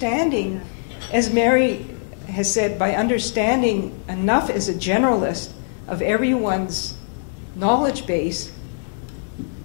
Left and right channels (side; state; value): right; silent; digital silence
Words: as Mary has said, by understanding enough as a generalist of everyone's knowledge base,